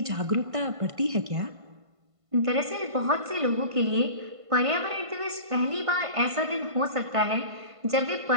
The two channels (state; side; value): late; left; 1.5 ms